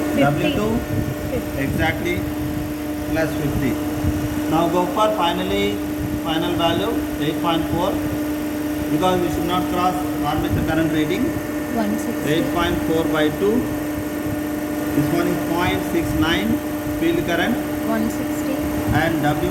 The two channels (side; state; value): both; identical; correlation 1.00